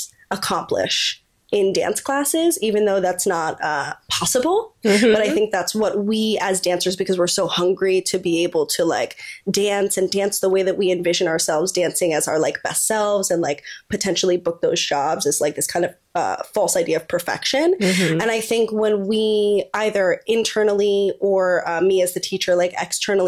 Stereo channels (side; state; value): both; identical; correlation 1.00